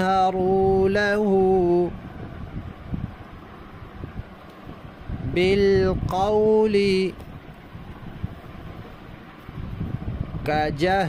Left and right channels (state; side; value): identical; both; correlation 1.00